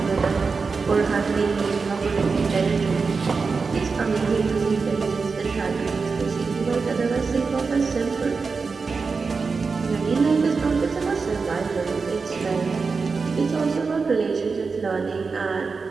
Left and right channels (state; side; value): quieter; left; 4.7 dB